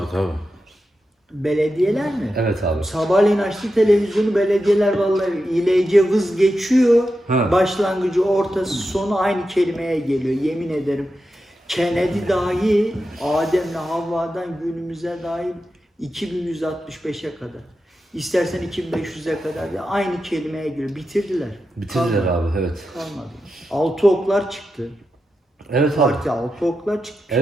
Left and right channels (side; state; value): both; normal; correlation 0.89